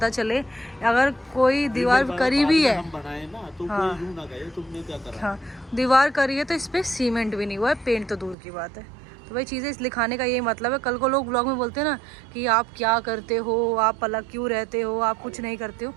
चले, अगर कोई दीवार करी भी है, हम बनाए ना तो हाँ, कोई यूं ना कहे तुमने क्या करा। हाँ, दीवार करी है तो इस पर सीमेंट भी नहीं हुआ है, पेंट तो दूर की बात है। तो भाई चीज़ें इस लिखाने का यही मतलब है। कल को लोग ब्लॉग में बोलते हैं ना कि आप क्या करते हो, आप अलग क्यों रहते हो, आप कुछ नहीं करते हो,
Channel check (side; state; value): left; drops out; at 8.3 s